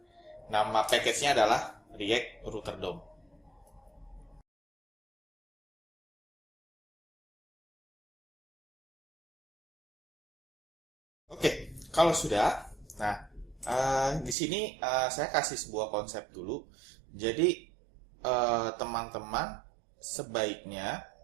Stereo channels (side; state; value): left; drops out; at 14.4 s